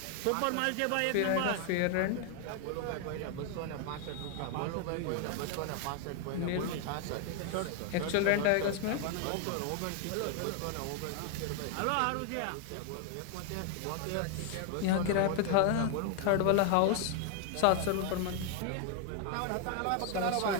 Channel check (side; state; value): both; different; correlation 0.00